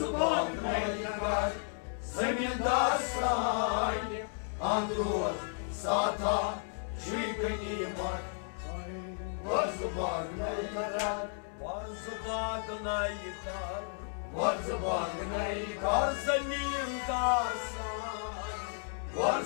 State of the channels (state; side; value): silent; right; 55 dB below the other